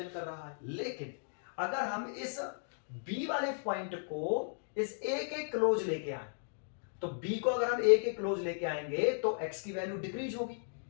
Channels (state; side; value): silent; right; digital silence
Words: कर रहा है। लेकिन अगर हम इस b वाले पॉइंट को इस a के क्लोज लेके आए, तो b को अगर हम a के क्लोज लेके आएंगे तो x की वैल्यू डिक्रीज होगी,